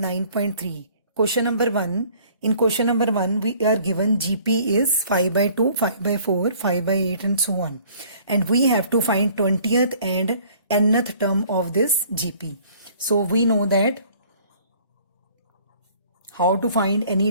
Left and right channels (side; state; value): both; inverted; correlation -0.55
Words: Question number 1. In question number 1, we are given GP is 5 by 2, 5 by 4, 5 by 8 and so on. And we have to find 20th and nth term of this GP. So we know that how to find any